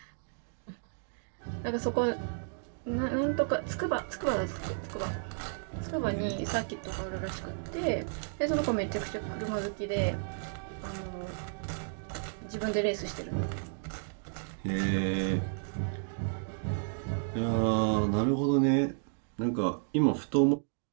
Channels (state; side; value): silent; left; digital silence